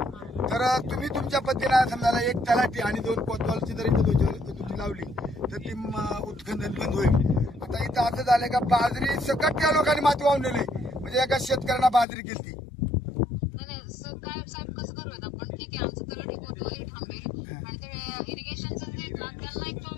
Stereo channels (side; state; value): right; drops out; at 12.1 s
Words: तर तुम्ही तुमच्या पद्धतीने समजा एक तलाठी आणि 2 कोतवालची जर इथं दुधी लावली तर ती उत्खनन बंद होईल. आता इथं असं झालंय का बाजरी सकट त्या लोकांनी माती वाहून नेली, म्हणजे एका शेतकऱ्यांना बाजरी गेलती. काय साहेब कसं करूयात आपण, ठीक आहे आमचं तलाठी कोतवाली थांबेल आणि ते इरिगेशनचं जे ना त्यांना एक